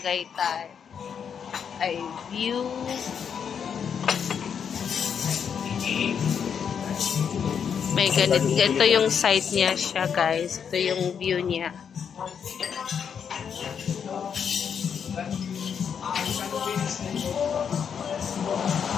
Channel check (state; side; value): quieter; right; 7.4 dB